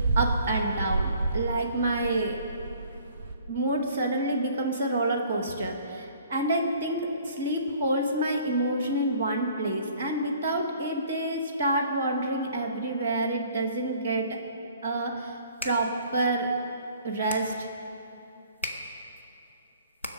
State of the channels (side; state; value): both; inverted; correlation -0.55